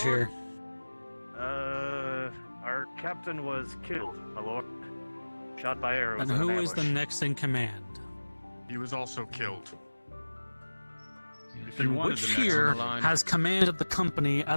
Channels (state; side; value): inverted; both; correlation -1.00